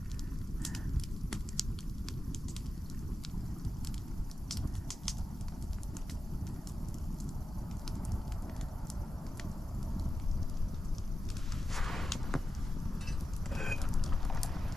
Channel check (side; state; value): both; normal; correlation 0.92